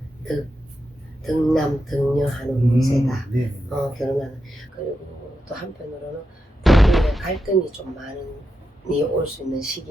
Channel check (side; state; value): both; normal; correlation 0.87